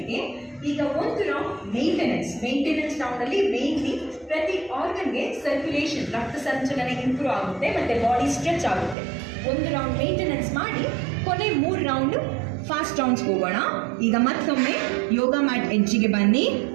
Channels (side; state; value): left; drops out; at 9.0 s